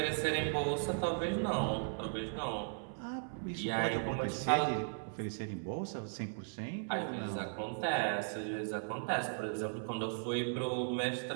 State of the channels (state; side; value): silent; left; 53 dB below the other